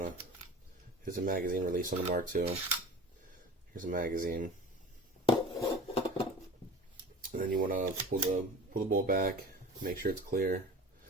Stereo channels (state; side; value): normal; both; correlation 0.38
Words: to, here's a magazine release on the Mark II. Here's a magazine. And then you want to pull the bolt back, make sure it's clear,